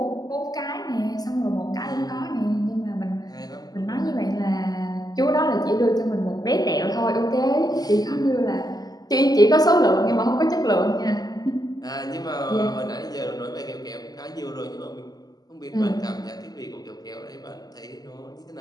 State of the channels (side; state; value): right; late; 0.19 ms